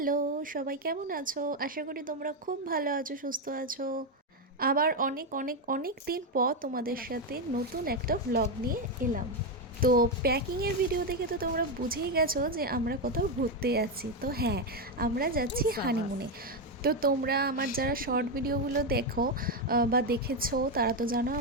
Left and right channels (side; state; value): both; normal; correlation 0.07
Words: সবাই কেমন আছো? আশা করি তোমরা খুব ভালো আছো, সুস্থ আছো। আবার অনেক অনেক অনেক দিন পর তোমাদের সাথে নতুন একটা ভ্লগ নিয়ে এলাম। তো প্যাকিংয়ের ভিডিও দেখে তো তোমরা বুঝেই গেছো যে আমরা কোথাও ঘুরতে যাচ্ছি। তো হ্যাঁ, আমরা যাচ্ছি হানিমুনে। তো তোমরা আমার যারা শর্ট ভিডিওগুলো দেখো বা দেখেছো তারা তো জানো